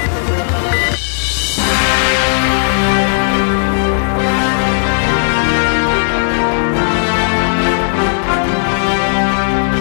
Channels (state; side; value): silent; right; digital silence